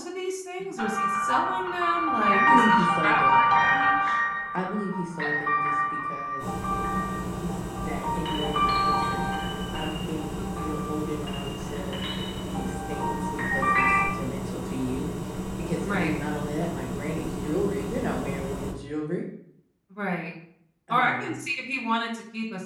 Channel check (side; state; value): both; identical; correlation 1.00